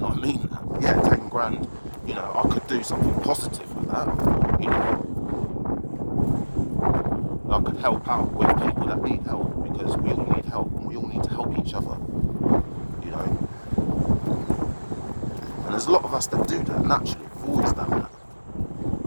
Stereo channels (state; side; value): inverted; both; correlation -1.00